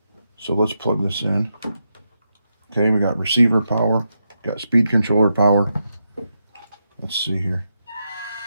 So let's plug this in. Okay, we got receiver power, got speed controller power. Let's see here.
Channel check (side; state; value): both; inverted; correlation -0.84